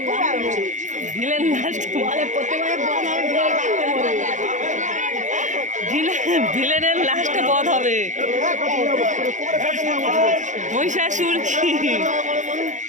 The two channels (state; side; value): late; left; 0.36 ms